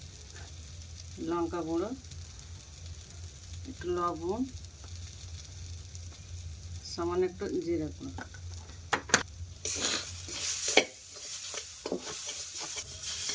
লঙ্কা গুঁড়ো, একটু লবণ, সামান্য একটু জিরে গুঁড়ো।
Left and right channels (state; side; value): identical; both; correlation 1.00